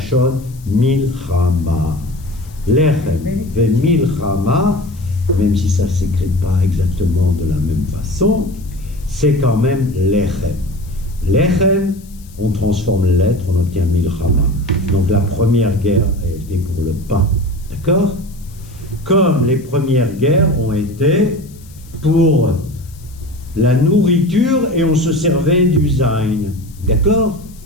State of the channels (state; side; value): noise; left; hiss, 25 dB below the sound